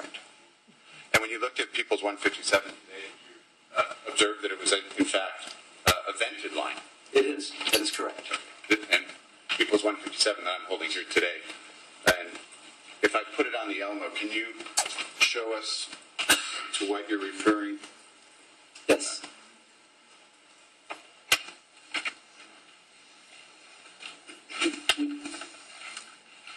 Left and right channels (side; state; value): both; identical; correlation 1.00